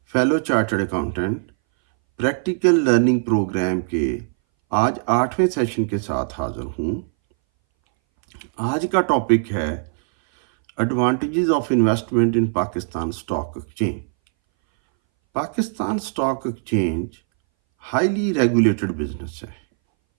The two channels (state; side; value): silent; left; 61 dB below the other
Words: fellow chartered accountant, practical learning programme کے آج 8ویں سیشن کے ساتھ حاضر ہوں۔ آج کا ٹاپک ہے advantages of investment in Pakistan stock exchange. Pakistan stock exchange highly regulated business ہے۔